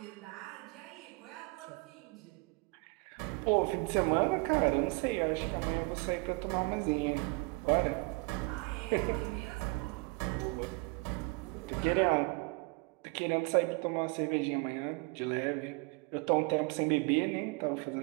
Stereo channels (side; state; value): left; quieter; 28.3 dB